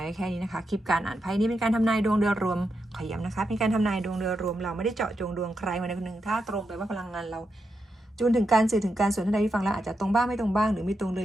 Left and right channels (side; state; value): both; normal; correlation 0.85